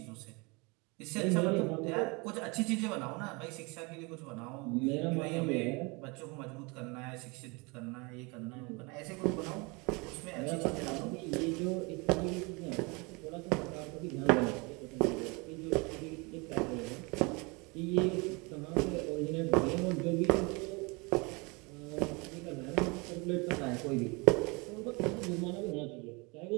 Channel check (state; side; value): quieter; left; 28.1 dB